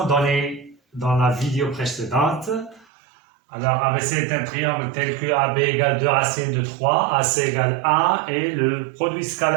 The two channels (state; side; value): drops out; left; at 2.9 s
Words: donné dans la vidéo précédente. Alors, ABC est un triangle tel que AB égale 2 racines de 3, AC égale 1 et le produit